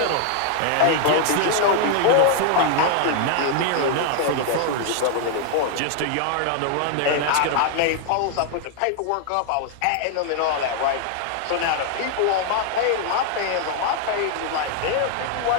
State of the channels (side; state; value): both; different; correlation 0.00